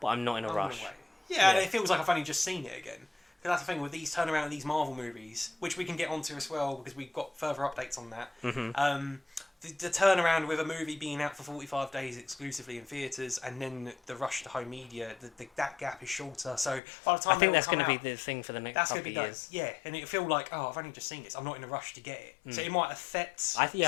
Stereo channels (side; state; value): right; drops out; at 16.8 s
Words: I'm not in a rush. Yeah, and it feels like I've only just seen it again. Because that's the thing with these turnaround of these Marvel movies, which we can get onto as well because we've got further updates on that. The turnaround with a movie being out for 45 days exclusively in theatres, and then the rush to home media, that gap is shorter. So by the time I think that's going to be the thing for the next couple of years. Yeah, and it'll feel like, I've only just seen this. I'm not in a rush to get it. So it might affect some